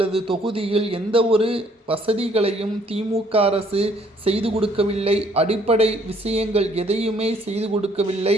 தொகுதியில் எந்த ஒரு வசதிகளையும் திமுக அரசு செய்து கொடுக்கவில்லை. அடிப்படை விஷயங்கள் எதையுமே செய்து கொடுக்கவில்லை.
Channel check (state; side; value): normal; both; correlation 0.64